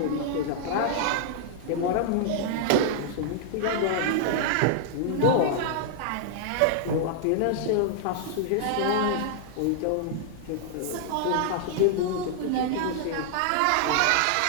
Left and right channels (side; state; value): both; different; correlation -0.01